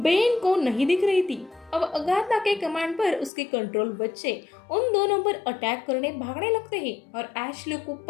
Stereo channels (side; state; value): right; drops out; at 3.3 s